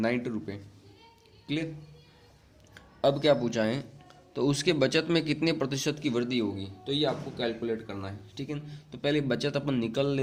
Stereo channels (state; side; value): identical; both; correlation 1.00